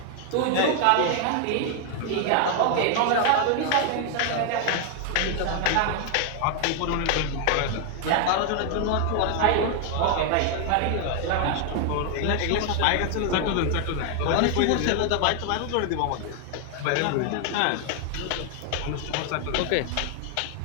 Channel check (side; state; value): both; different; correlation 0.00